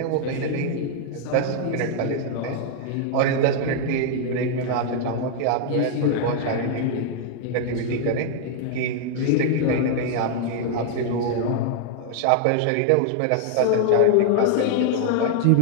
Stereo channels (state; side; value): different; both; correlation 0.00